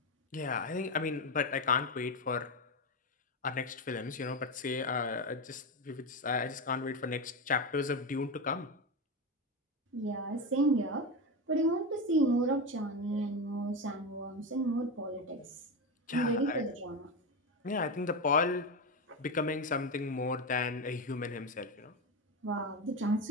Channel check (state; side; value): normal; both; correlation 0.15